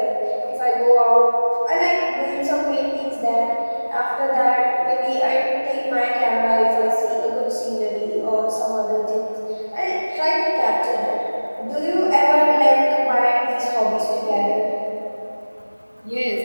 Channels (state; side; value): inverted; both; correlation -1.00